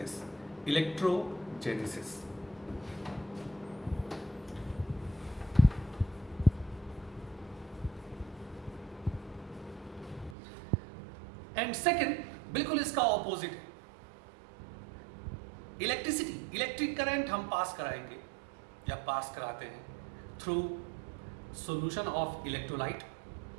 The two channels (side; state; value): left; drops out; at 10.4 s